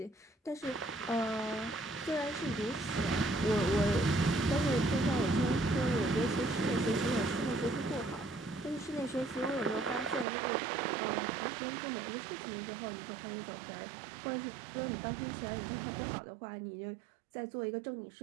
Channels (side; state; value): left; drops out; at 10.2 s